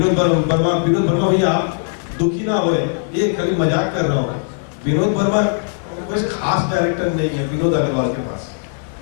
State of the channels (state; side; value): silent; right; digital silence